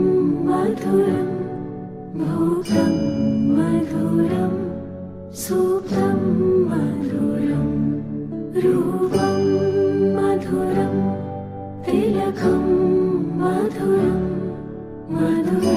मधुरं भोगं मधुरं सूक्तं मधुरं रूपं मधुरं तिलकं मधुरं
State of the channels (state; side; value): identical; both; correlation 1.00